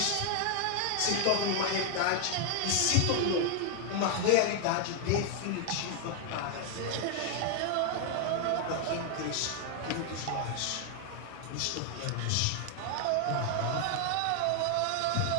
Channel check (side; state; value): both; different; correlation 0.00